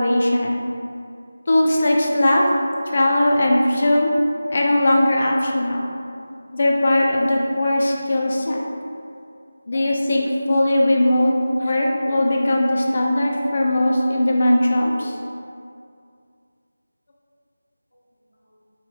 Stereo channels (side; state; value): both; inverted; correlation -0.96